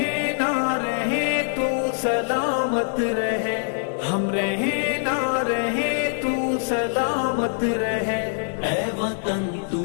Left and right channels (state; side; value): silent; right; digital silence